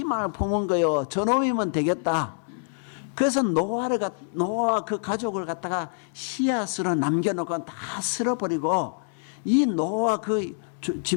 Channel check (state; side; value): silent; right; digital silence